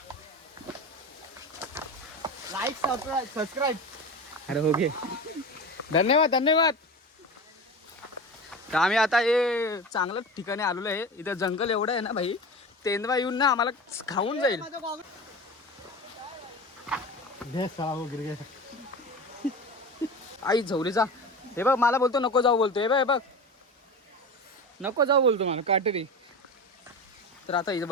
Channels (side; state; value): both; normal; correlation 0.29